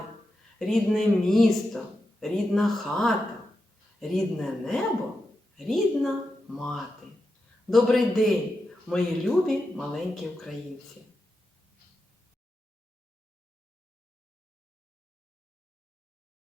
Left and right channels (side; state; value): both; normal; correlation 0.88